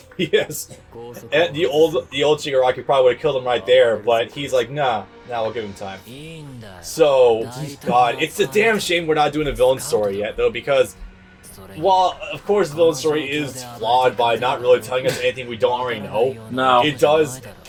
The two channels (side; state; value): both; identical; correlation 1.00